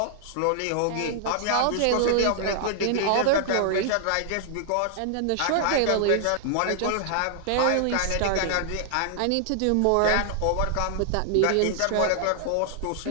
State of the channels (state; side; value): different; both; correlation -0.01